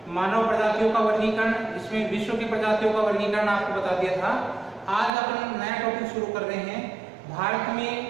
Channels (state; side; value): drops out; left; at 5.1 s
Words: मानव प्रजातियों का वर्गीकरण, इसमें विश्व की प्रजातियों का वर्गीकरण आपको बता दिया था। आज अपन नया टॉपिक शुरू कर रहे हैं। भारत में